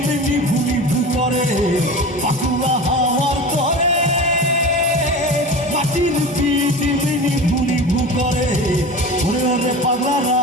মেনি ভুলি ভুতরে পাকুয়া হাওয়ার করে মাটির পিঠে মেনি ভুলি ভুতরে ওরে ওরে পাগলারা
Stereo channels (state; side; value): normal; both; correlation 0.32